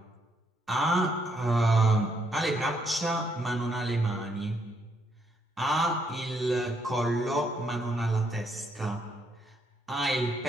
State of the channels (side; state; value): both; normal; correlation 0.74